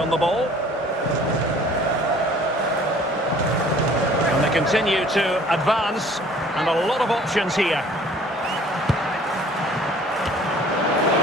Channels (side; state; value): both; normal; correlation 0.53